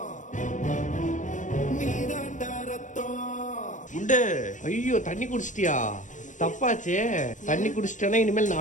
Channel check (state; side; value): late; right; 0.37 ms